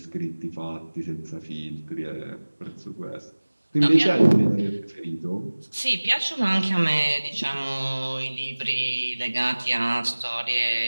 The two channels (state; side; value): inverted; both; correlation -1.00